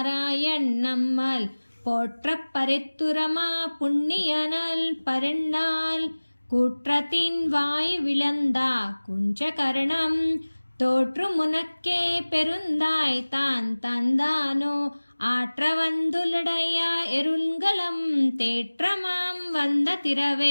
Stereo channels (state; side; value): inverted; both; correlation -1.00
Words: நம்மால் போற்ற பரித்துரமா புண்ணியனல் பரிண்ணால் கூற்றத்தின் வாய் விளந்தா குஞ்சகரணம் தோற்று முனக்கே பெருந்தாய் தான் தந்தானோ ஆற்றவந்துலடைய எருள்கலம் தேற்றமாம் வந்த